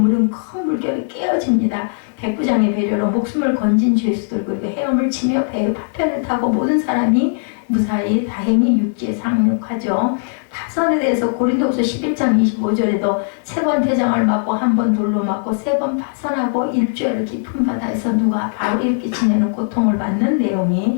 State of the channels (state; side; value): silent; right; 61 dB below the other